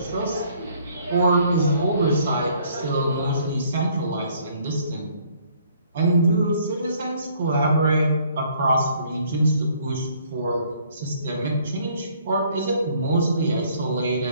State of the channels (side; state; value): both; inverted; correlation -0.62